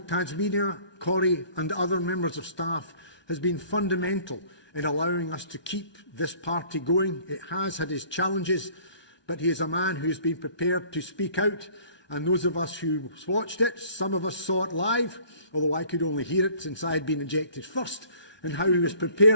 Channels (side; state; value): right; late; 1.2 ms